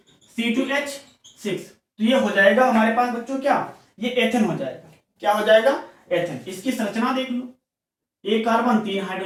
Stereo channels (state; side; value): identical; both; correlation 1.00